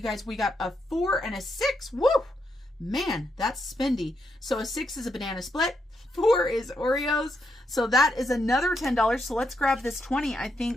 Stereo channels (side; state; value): both; normal; correlation 0.80